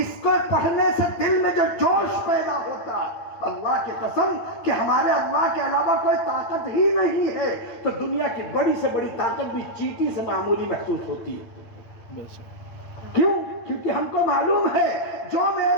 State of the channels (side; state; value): right; late; 8.8 ms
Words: کو پڑھنے سے دل میں جو جوش پیدا ہوتا ہے، اللہ کی قسم کہ ہمارے اللہ کے علاوہ کوئی طاقت ہی نہیں ہے، تو دنیا کی بڑی سے بڑی طاقت بھی چیٹی سے معمولی محسوس ہوتی ہے۔ کیوں؟ کیونکہ ہم کو معلوم ہے جو